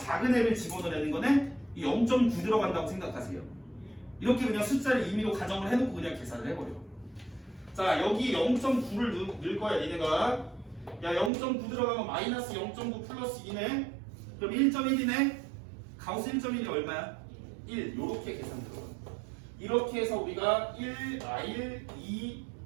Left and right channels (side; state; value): left; drops out; at 11.3 s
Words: 애를 집어넣는 거네? 이 0.9 들어간다고 생각하세요. 이렇게 그냥 숫자를 임의로 가정을 해놓고 그냥 계산을 해버려. 자, 여기 0.9를 넣을 거야, 니네가. 야, 0.9 들어가면 마이너스 0.9 플러스 2네? 그럼 1.1이네? 가우스 1.1이 얼마야? 1. 요렇게 계산 들어가. 이렇게 해서 우리가 1R,